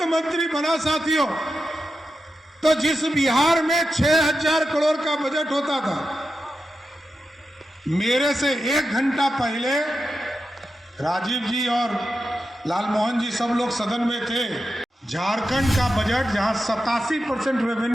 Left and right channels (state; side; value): normal; both; correlation 0.90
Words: मंत्री बना साथियों, तो जिस बिहार में 6,000 करोड़ का बजट होता था, मेरे से 1 घंटा पहले राजीव जी और लालमोहन जी सब लोग सदन में थे। झारखंड का बजट, जहां 87%